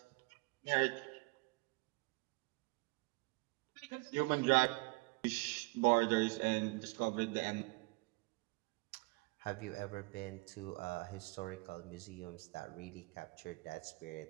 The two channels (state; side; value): quieter; left; 26.0 dB